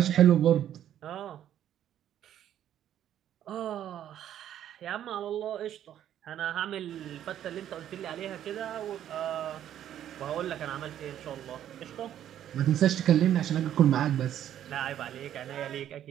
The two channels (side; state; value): left; quieter; 10.9 dB